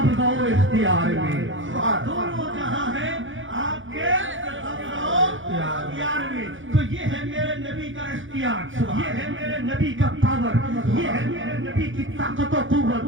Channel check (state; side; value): late; left; 0.57 ms